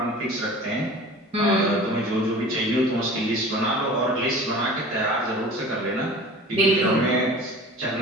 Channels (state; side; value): normal; both; correlation 0.40